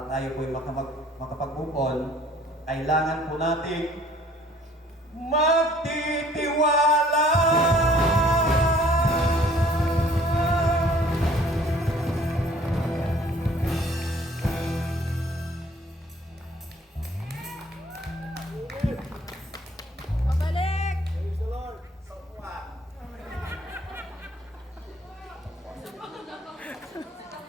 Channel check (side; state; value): both; normal; correlation 0.56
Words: tayo po'y makapag-move, kailangan po natin magtitiwala.